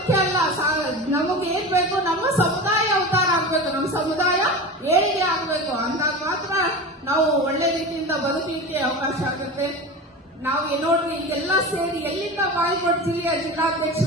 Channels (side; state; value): both; normal; correlation 0.28